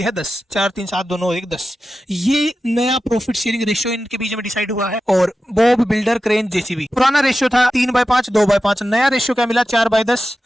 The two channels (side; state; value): both; normal; correlation 0.93